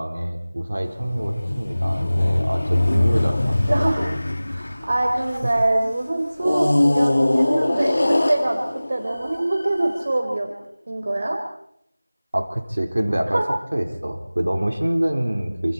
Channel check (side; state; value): both; inverted; correlation -0.98